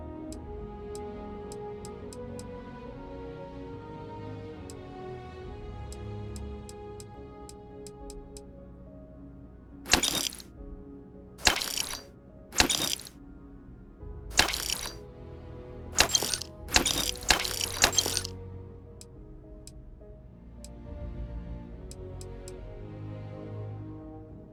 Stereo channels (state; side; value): identical; both; correlation 1.00